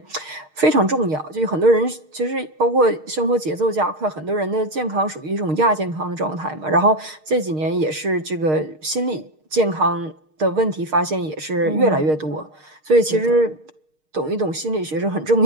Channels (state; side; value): late; left; 6.5 ms